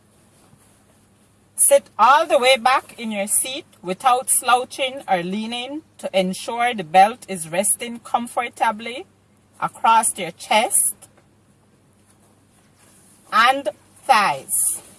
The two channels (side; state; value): both; identical; correlation 1.00